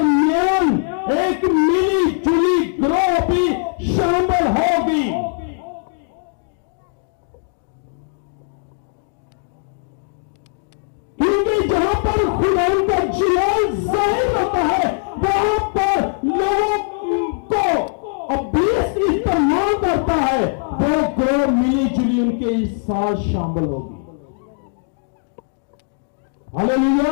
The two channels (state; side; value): silent; right; 66 dB below the other